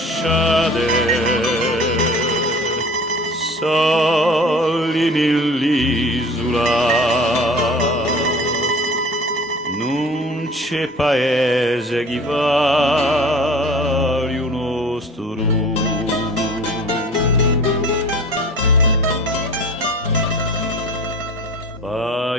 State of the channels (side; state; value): both; normal; correlation 0.42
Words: soli nell'isola, non c'è paese che vale un nostro.